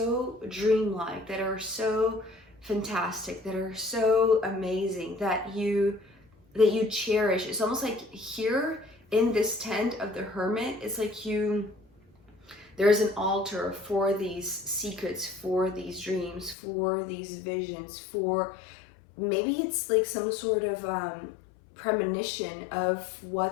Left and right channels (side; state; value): right; drops out; at 16.6 s